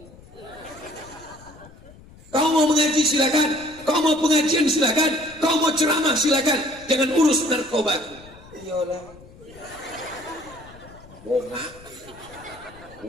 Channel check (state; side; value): noise; left; rumble, 21 dB below the sound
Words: Kau mau mengaji silakan, kau mau pengajian silakan, kau mau ceramah silakan, jangan urus narkobaku. Iyalah, bongak,